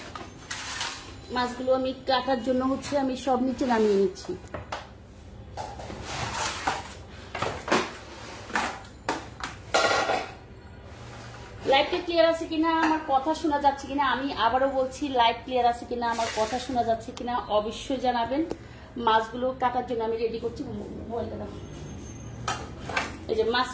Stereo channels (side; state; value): both; identical; correlation 1.00